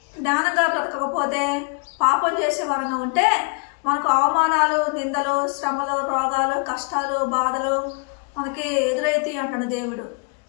జ్ఞానంగా బ్రతకకపోతే, పాపం చేసే వారంగా ఉంటే మనకు అవమానాలు, నిందలు, శ్రమలు, రోగాలు, కష్టాలు, బాధలు మనకి ఎదురైతాయి అంటాడు దేవుడు.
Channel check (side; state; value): right; quieter; 37.1 dB